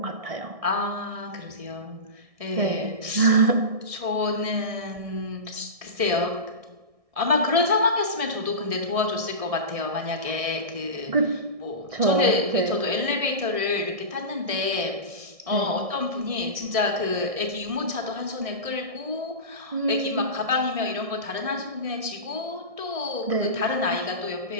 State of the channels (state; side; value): late; left; 1.6 ms